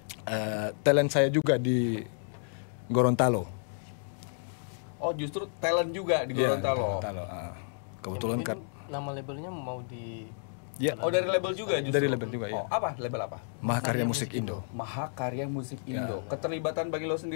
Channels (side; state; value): right; silent; digital silence